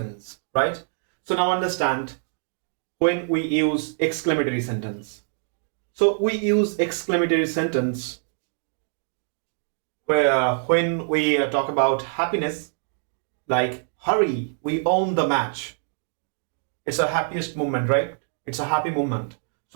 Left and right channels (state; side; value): silent; left; digital silence